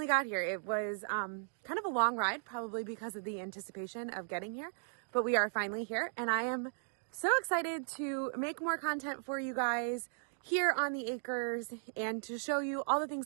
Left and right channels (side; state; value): left; silent; digital silence